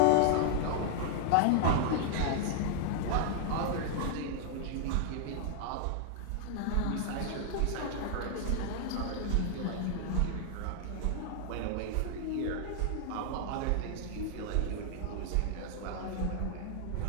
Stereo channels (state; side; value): different; both; correlation 0.00